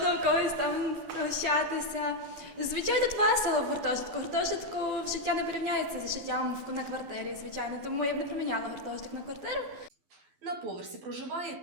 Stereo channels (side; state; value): left; late; 12 ms